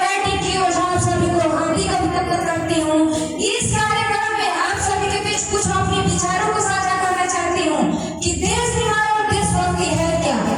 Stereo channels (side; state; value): both; identical; correlation 1.00